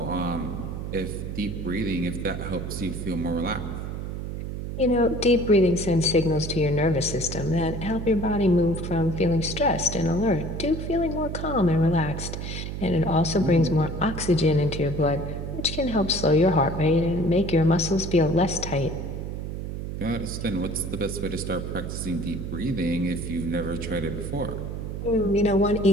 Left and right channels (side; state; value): right; noise; hum, 6 dB below the sound